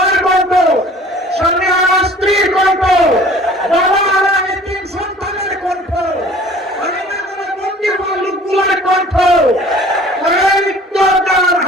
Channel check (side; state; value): both; normal; correlation 0.49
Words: কণ্ঠ, স্বামী হারা স্ত্রীর কণ্ঠ, বাবা হারা এতিম সন্তানের কণ্ঠ, লোকগুলোর কণ্ঠ,